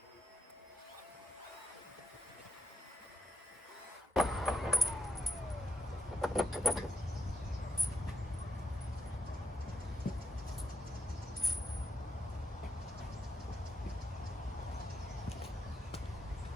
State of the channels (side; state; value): both; normal; correlation 0.81